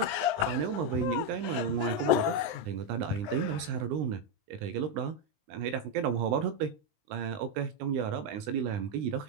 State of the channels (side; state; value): left; late; 20 ms